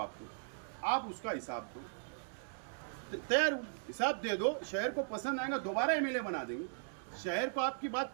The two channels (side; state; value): left; silent; digital silence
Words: दो, आप उसका हिसाब दो। तैयार हूँ, हिसाब दे दो। शहर को पसंद आएगा दोबारा एमएलए बना देंगे। शहर को आपकी बात